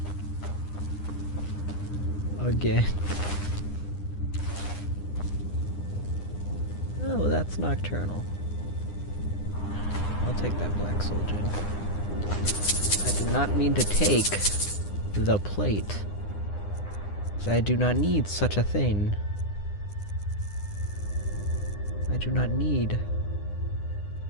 Again. Oh, that's nocturnal. I'll take that black soul gem. I did not mean to take the plate. I do not need such a thing. I do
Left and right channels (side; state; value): right; late; 9.9 ms